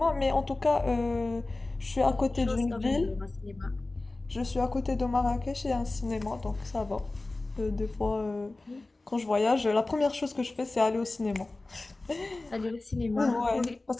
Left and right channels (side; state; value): right; quieter; 3.1 dB